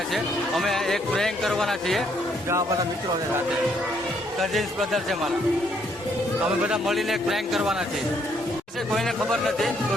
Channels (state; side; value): normal; both; correlation 0.70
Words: છે. અમે એક પ્રેન્ક કરવાના છીએ. જો આ બધા મિત્રો છે સાથે, કઝિન્સ બ્રધર છે મારા. અમે બધા મળીને એક પ્રેન્ક કરવાના છીએ. કોઈને ખબર નથી તો